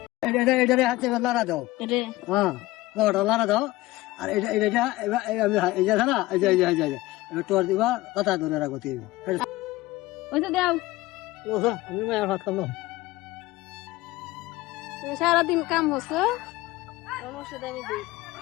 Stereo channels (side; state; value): right; quieter; 18.3 dB